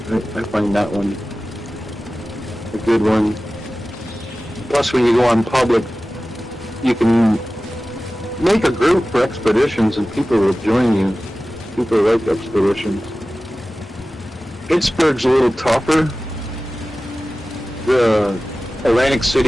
I find that one a good one. Plus, when you go on public, you can make a group for expeditions and people will join you. People like expeditions. Pittsburgh's a little tougher. The Atlantic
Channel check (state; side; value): normal; both; correlation 0.96